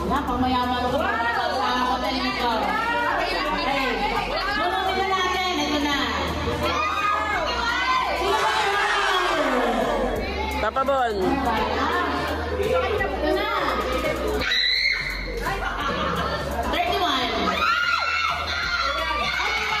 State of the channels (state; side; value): identical; both; correlation 1.00